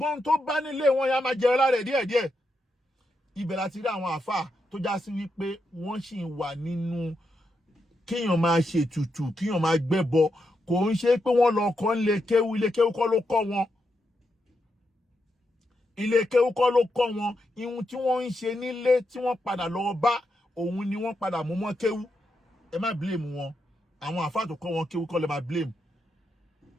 tó bá nílé wọn ya máa jẹ lára ẹ̀ díẹ̀díẹ̀ ibẹ̀ láti rí àwọn àfáà tó já sí wípé wọ́n sì ń wà nínú kéèyàn máa ṣètùtù kéèyàn máa gbẹ́bọ kò ń ṣe pé wọ́n lọ kọ́ ilé kéwú kọ́ ló kọ́ wọn ilé kéwú kọ́ ló kọ́ wọn ihun tí wọ́n ń ṣe nílé tí wọ́n padà lọ bá òun ni wọ́n padà mú mọ́ kéwú ẹ má blame wọn àwọn àfáà tó kọ́ wọn kéwú kọ́ lè má blame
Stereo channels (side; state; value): both; normal; correlation 0.84